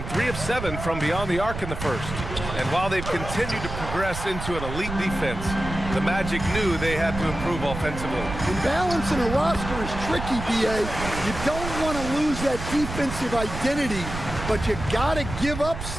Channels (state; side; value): noise; right; rumble, 8 dB below the sound